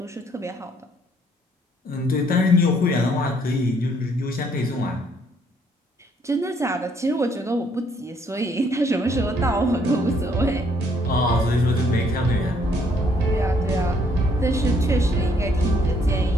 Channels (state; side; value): normal; both; correlation 0.67